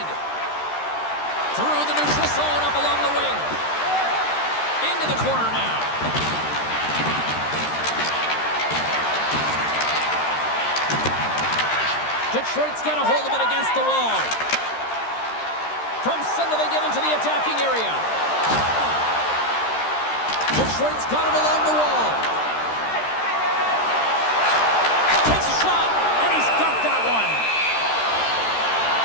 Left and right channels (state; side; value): late; right; 13 ms